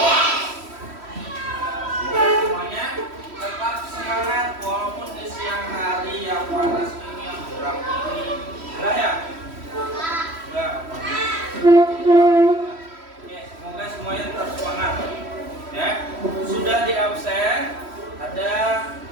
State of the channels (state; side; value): late; left; 3.1 ms